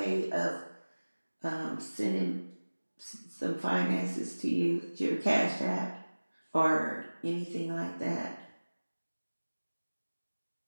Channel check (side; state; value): both; inverted; correlation -1.00